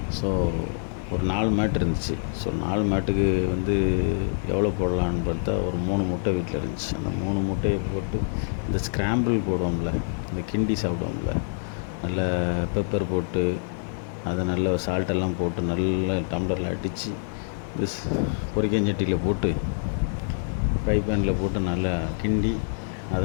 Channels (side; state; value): right; silent; 61 dB below the other